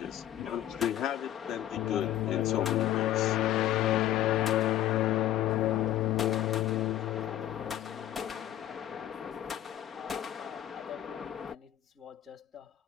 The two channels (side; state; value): right; quieter; 12.2 dB